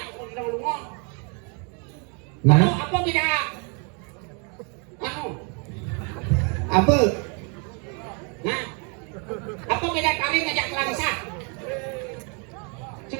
kau lu kau. Nah, Apa beda? Anu, apa? nah, apa beda kali ngajak langsa?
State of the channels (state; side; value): quieter; left; 36.0 dB